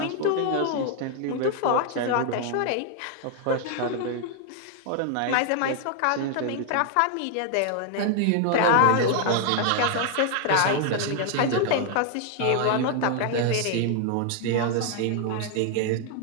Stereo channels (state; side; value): different; both; correlation 0.00